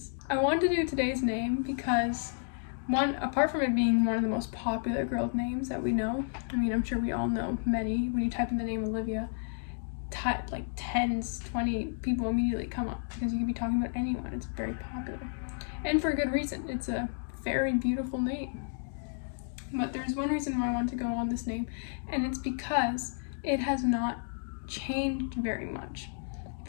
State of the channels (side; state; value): right; silent; digital silence